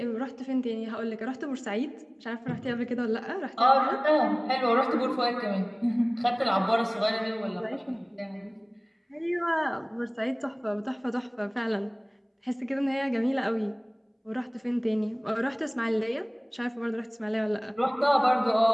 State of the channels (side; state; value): both; identical; correlation 1.00